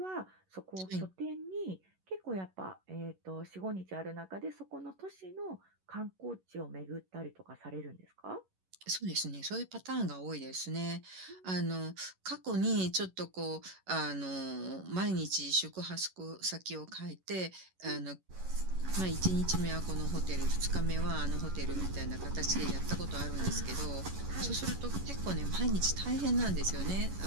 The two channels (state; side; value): late; left; 11 ms